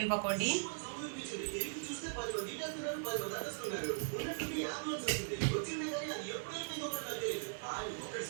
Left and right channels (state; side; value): silent; left; digital silence